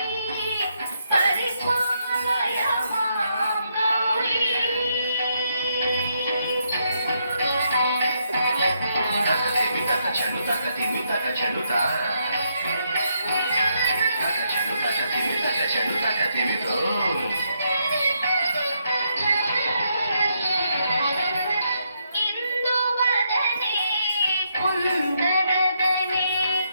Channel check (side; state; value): both; inverted; correlation -0.77